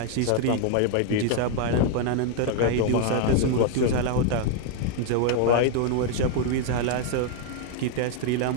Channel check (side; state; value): both; different; correlation 0.00